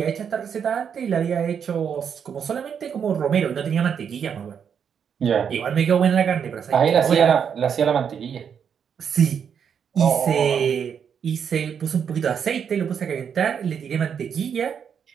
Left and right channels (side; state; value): left; quieter; 7.5 dB